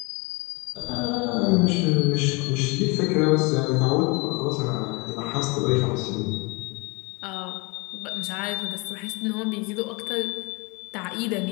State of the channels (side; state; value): right; quieter; 28.0 dB